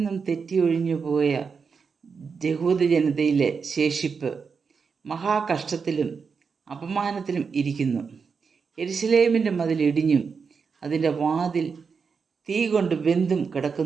തെറ്റിയൊഴിഞ്ഞു പോയ യഹൂദ ജനതയിലെ ശേഷിപ്പ് മഹാകഷ്ടത്തിലും അപമാനത്തിലും ഇരിക്കുന്നു. യെരുശലേമിൻ്റെ മതിൽ ഇടിഞ്ഞും അതിൻ്റെ വാതിൽ തീ കൊണ്ട് വെന്തും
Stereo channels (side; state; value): left; quieter; 5.6 dB